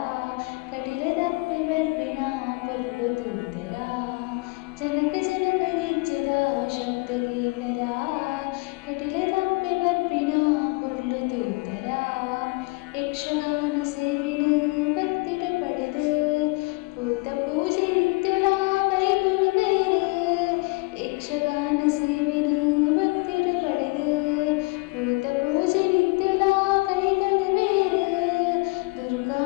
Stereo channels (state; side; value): quieter; right; 26.8 dB